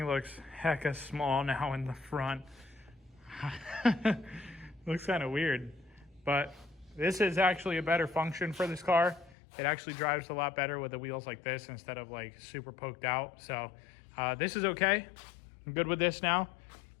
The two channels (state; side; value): drops out; right; at 9.3 s